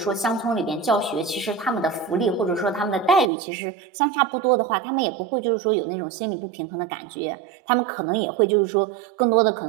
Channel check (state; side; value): drops out; left; at 3.3 s